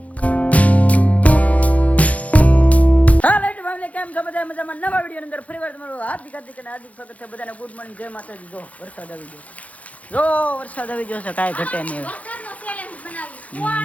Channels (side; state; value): right; late; 0.068 ms